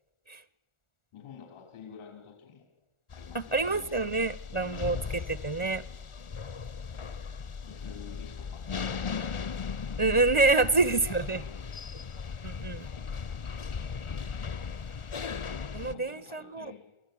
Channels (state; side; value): late; right; 1.4 ms